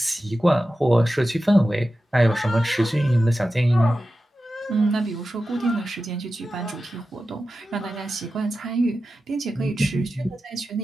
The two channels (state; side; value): normal; both; correlation 0.93